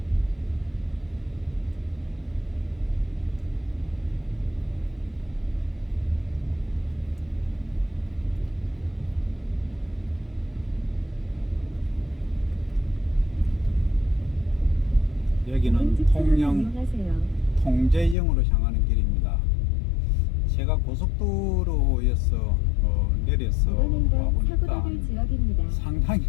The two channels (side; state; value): right; drops out; at 18.2 s